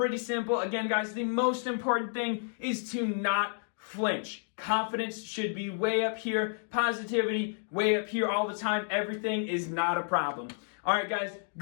simple. Again, guys, the most important thing is to not flinch. Confidence should be way up here. Positivity, way up here all the time. Everything is not a problem. All right, guys,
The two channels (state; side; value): silent; right; digital silence